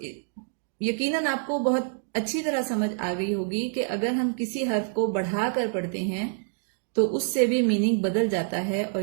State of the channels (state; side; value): silent; left; digital silence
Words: یقیناً آپ کو بہت اچھی طرح سمجھ آ گئی ہوگی کہ اگر ہم کسی حرف کو بڑھا کر پڑھتے ہیں تو اس سے بھی میننگ بدل جاتا ہے، اور